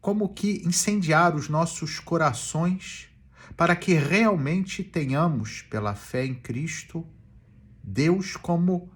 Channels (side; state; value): both; identical; correlation 1.00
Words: como que incendiar os nossos corações para que realmente tenhamos, pela fé em Cristo, Deus como